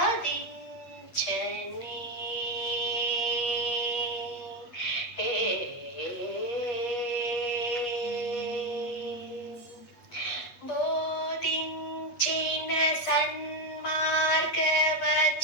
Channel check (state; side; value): late; right; 8.3 ms